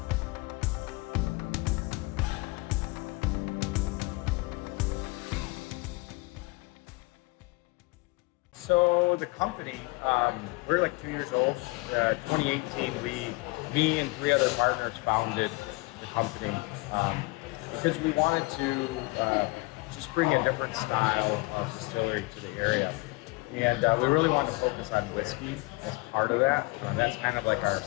So the company, we're like 2 years old. 2018, me and 3 other partners founded the company because we wanted to just bring a different style of distillery to the area. And we really wanted to focus on whiskey as part of that. And that's kind of like our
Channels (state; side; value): quieter; right; 25.1 dB